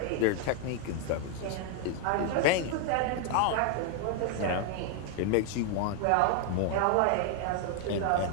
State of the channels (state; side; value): different; both; correlation 0.00